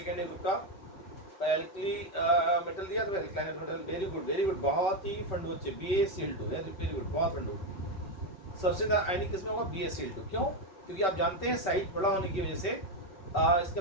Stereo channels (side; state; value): right; late; 5.3 ms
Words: ग्रुप का एल्कली मेटल दिया, तो एल्काइल मेटल, वेरी गुड, बहुत ही फंडू बच्चे, BaCl2, वेरी गुड, बहुत फंडू। सबसे ज्यादा आयनिक किसमें होगा? BaCl2। क्यों? क्योंकि आप जानते हैं साइज बड़ा होने की वजह से